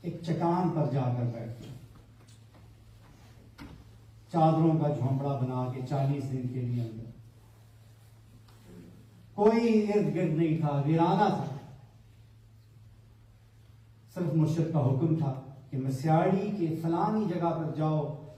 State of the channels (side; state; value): both; identical; correlation 1.00